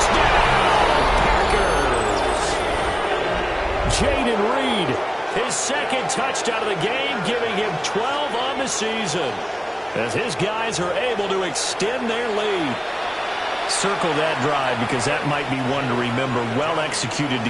Packers! Jaden Reed, his 2nd touchdown of the game, giving him 12 on the season, as his guys are able to extend their lead. Circle that drive because that might be one to remember. Well executed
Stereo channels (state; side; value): identical; both; correlation 1.00